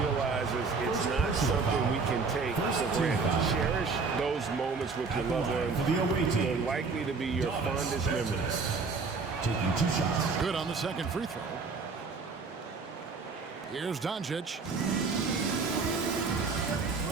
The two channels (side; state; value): left; quieter; 4.6 dB